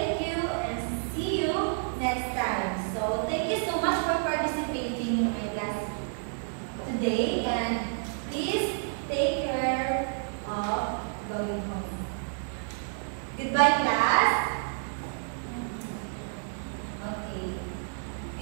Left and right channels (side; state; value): left; silent; digital silence